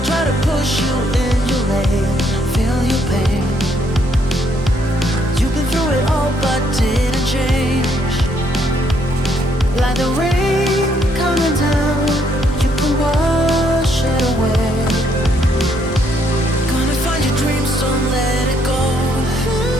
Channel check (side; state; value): both; normal; correlation 0.71